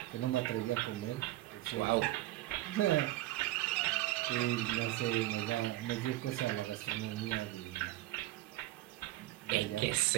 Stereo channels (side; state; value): left; quieter; 16.6 dB